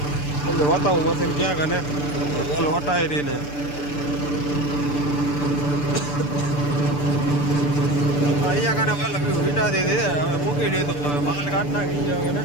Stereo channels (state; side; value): late; right; 6.8 ms